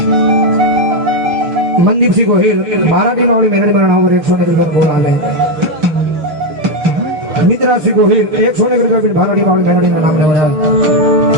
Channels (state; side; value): late; left; 6.7 ms